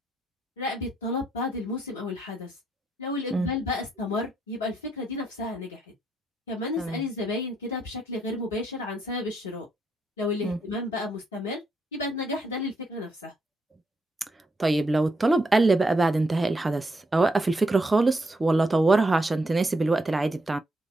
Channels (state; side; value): normal; both; correlation 0.77